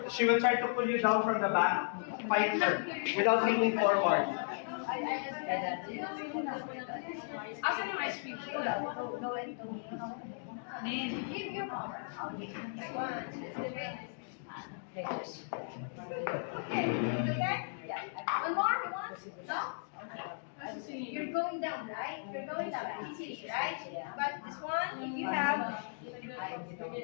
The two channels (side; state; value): right; silent; digital silence